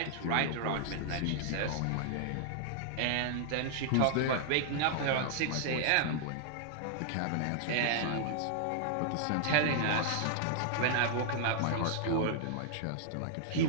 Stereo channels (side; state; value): both; different; correlation -0.01